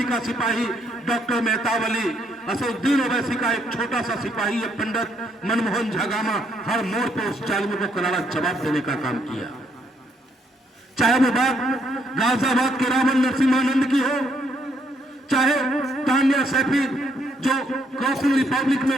का सिपाही डॉक्टर मेहतावली, असदुद्दीन ओवैसी का एक छोटा सा सिपाही पंडित मनमोहन झागामा हर मोड़ पर उस जालिमों को करारा जवाब देने का काम किया। चाहे वो बात गाजियाबाद के रावण नरसिम्हानंद की हो, चाहे तान्या सैफी जो क्रॉसिंग रिपब्लिक में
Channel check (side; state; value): both; normal; correlation 0.72